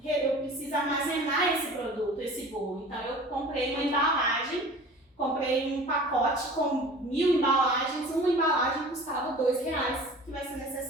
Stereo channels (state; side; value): normal; both; correlation 0.42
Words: armazenar esse produto, esse bolo. Então, eu comprei uma embalagem, comprei um pacote com 1000 embalagens, uma embalagem custava R$2, que vai ser